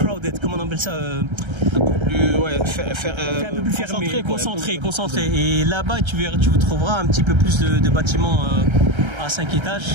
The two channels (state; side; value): late; left; 1.3 ms